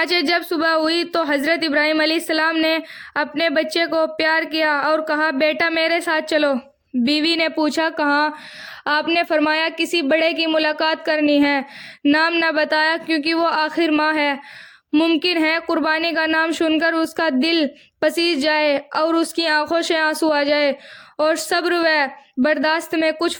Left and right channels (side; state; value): both; identical; correlation 1.00